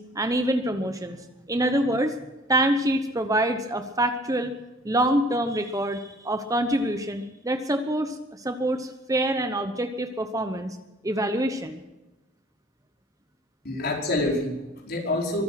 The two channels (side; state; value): both; normal; correlation 0.53